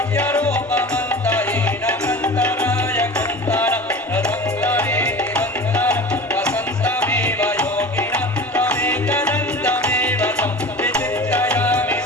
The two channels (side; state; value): both; normal; correlation 0.36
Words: రథంగరే నిరంతరం వసంతమేవ యోగినం త్వమేకదంతమేవ సంవిచిత్రయామి